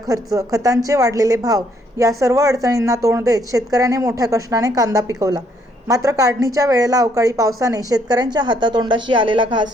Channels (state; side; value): normal; both; correlation 0.69